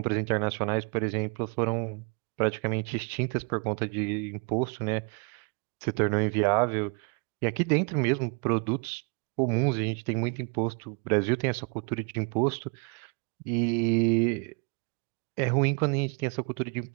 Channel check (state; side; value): quieter; left; 34.6 dB